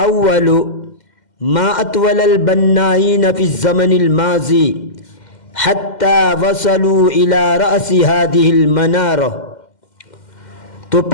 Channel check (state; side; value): late; right; 2.1 ms